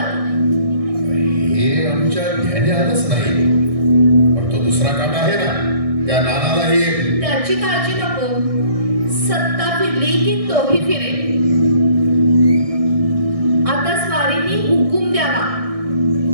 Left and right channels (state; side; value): late; left; 1.6 ms